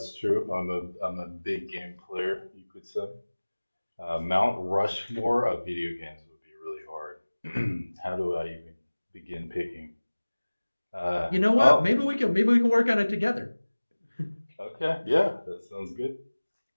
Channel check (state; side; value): inverted; both; correlation -1.00